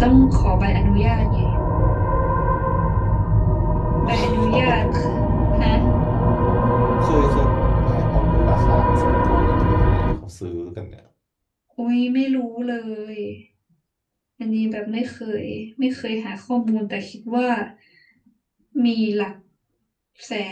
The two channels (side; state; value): both; identical; correlation 1.00